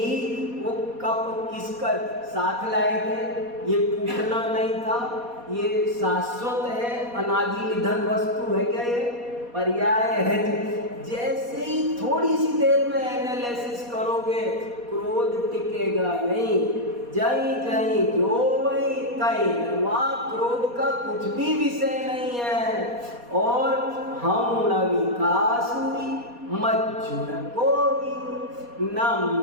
वो कप किसका साथ लाए थे? ये टूटना नहीं था, ये शाश्वत है, अनादि निधन वस्तु है क्या? ये पर्याय है। जैसे ही थोड़ी सी देर में एनालिसिस करोगे, क्रोध टिकेगा नहीं। जय जय जो वही तई, वहाँ क्रोध का कुछ भी विषय नहीं है। और हम न विकास हुई मज्जुन को भी, न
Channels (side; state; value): left; late; 4.2 ms